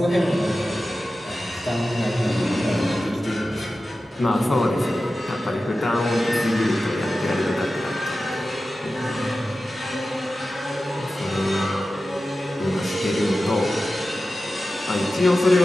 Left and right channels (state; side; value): normal; both; correlation 0.94